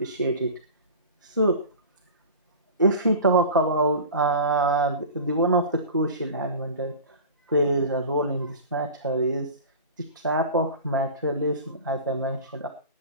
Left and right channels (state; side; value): inverted; both; correlation -0.35